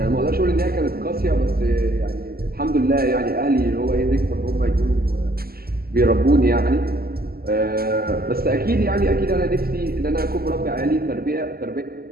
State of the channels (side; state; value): left; late; 0.45 ms